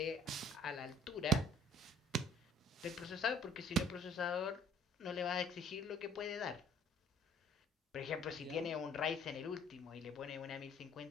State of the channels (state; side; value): normal; both; correlation 0.56